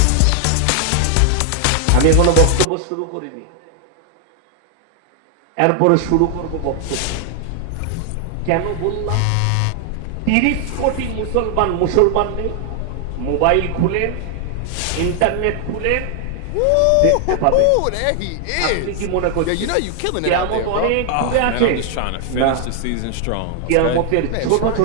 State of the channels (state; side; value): different; both; correlation 0.00